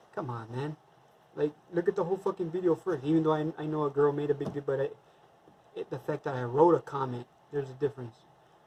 come on, man. Like, look at the whole fucking video first. Even though I know a girl made a big deal, but the fact that I wrote a comment, there's a difference.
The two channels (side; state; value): both; identical; correlation 1.00